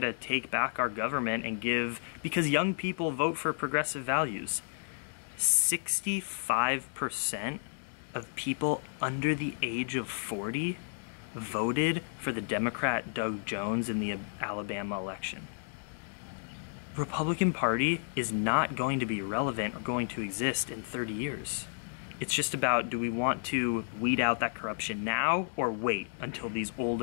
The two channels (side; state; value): right; silent; digital silence